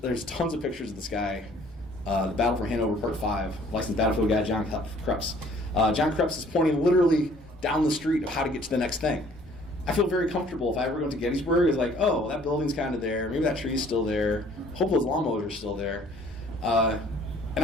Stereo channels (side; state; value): both; normal; correlation 0.56